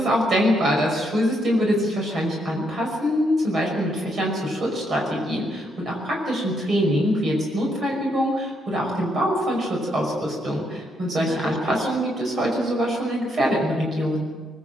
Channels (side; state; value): both; normal; correlation 0.75